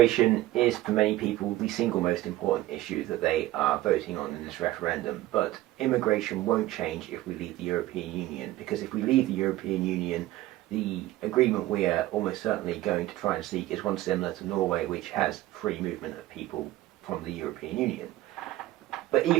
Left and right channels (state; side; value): quieter; left; 15.8 dB